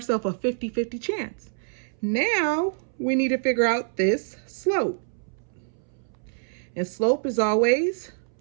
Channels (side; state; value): left; silent; 61 dB below the other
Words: a 50-50 chance. Now, we need to figure out this slope. And slope is always